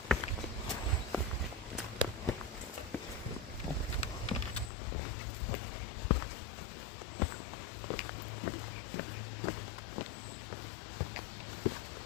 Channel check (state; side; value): drops out; right; at 4.7 s